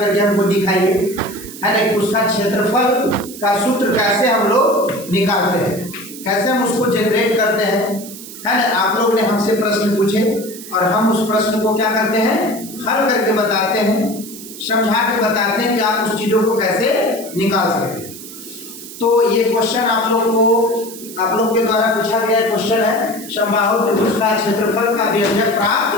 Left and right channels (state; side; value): noise; right; hiss, 14 dB below the sound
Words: हमको दिखाइए, है ना, कि उसका क्षेत्रफल का सूत्र कैसे हम लोग निकालते हैं, कैसे हम उसको जनरेट करते हैं, है ना। आप लोग ने हमसे प्रश्न पूछे और हम उस प्रश्न को क्या करते हैं, हल करके बताते हैं, समझा के बताते हैं कि आप उस चीज़ों को कैसे निकाल सकते हैं। तो ये क्वेश्चन आप लोग के द्वारा पूछा गया क्वेश्चन है, समबाहु त्रिभुज का क्षेत्रफल का व्यंजक प्राप्त